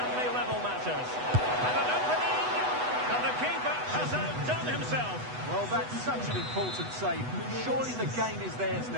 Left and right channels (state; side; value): late; left; 8.1 ms